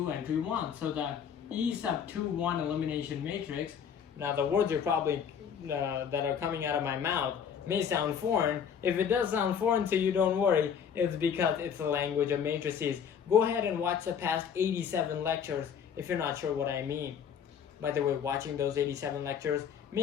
entry 1. So the E sub 2, 1 elimination matrix. Now the words are probably that are coming out of my mouth may sound foreign. If it does sound foreign to you, don't worry. It's because it's the language of matrices. Go ahead and watch the past 87 lectures if you're not sure what I mean. By the way, watching those 87 lectures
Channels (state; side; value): quieter; right; 7.7 dB